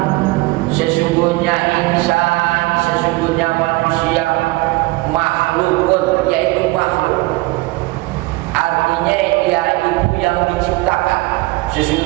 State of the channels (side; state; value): left; quieter; 21.9 dB